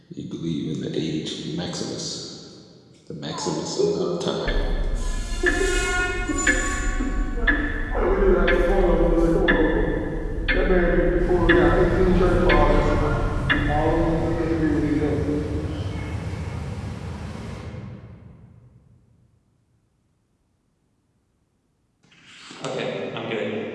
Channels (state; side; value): identical; both; correlation 1.00